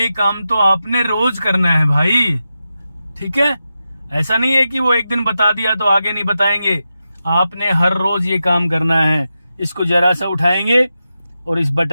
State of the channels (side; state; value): both; inverted; correlation -0.90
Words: काम तो आपने रोज करना है भाई। ठीक है, ऐसा नहीं है कि वो एक दिन बता दिया तो आगे नहीं बताएंगे, आपने हर रोज ये काम करना है। इसको जरा सा उठाएंगे और इस